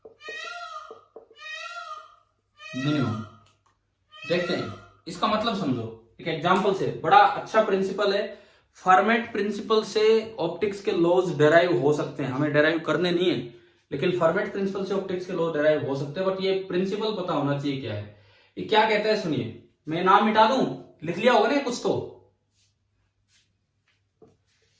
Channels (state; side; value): identical; both; correlation 1.00